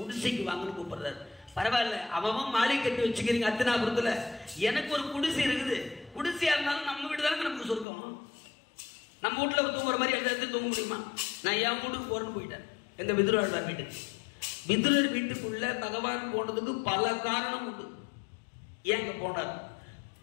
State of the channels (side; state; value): right; drops out; at 7.9 s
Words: வாங்கன்னு கூப்பிடுறாரு. பரவாயில்ல, அவன் மாளிகை கட்டி வச்சுக்கிறீங்க அத்தினாபுரத்துல, எனக்கு ஒரு குடிசை இருக்குது. குடிசையா இருந்தாலும் நம்ம வீடு தானே நமக்கு சொர்க்கம். நம்ம வீட்டுல தூங்குற மாதிரி எந்த இடத்துல தூங்க முடியுமா? நான் என் வீட்டுக்கு போறேன்னு போயிட்டேன், எங்க விதுராழ்வார் வீட்டுக்கு. விதுரர் வீட்டுக்குள்ள பகவான் போனதுக்கு பல காரணம் உண்டு. ஏங்க போனார்?